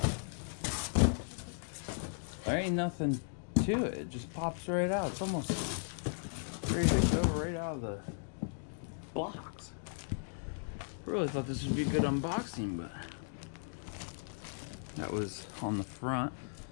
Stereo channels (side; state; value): right; silent; digital silence